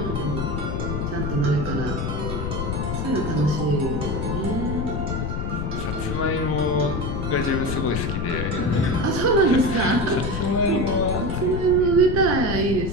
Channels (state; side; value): noise; left; rumble, 2 dB below the sound